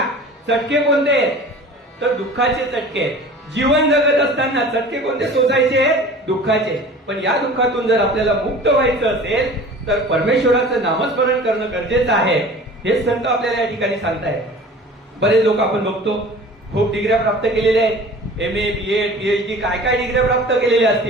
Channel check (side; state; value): both; normal; correlation 0.42